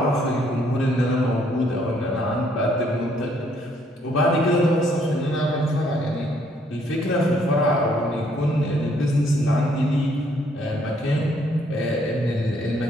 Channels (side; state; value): both; normal; correlation 0.67